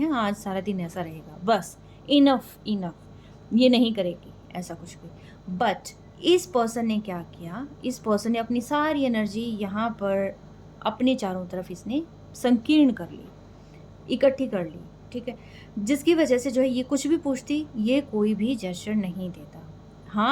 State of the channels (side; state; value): both; identical; correlation 1.00